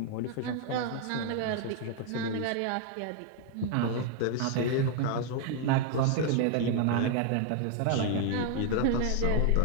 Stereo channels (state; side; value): different; both; correlation 0.00